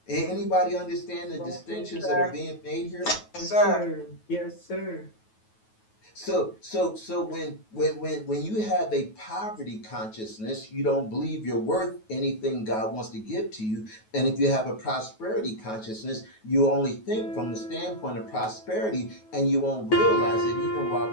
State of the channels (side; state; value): right; late; 9.3 ms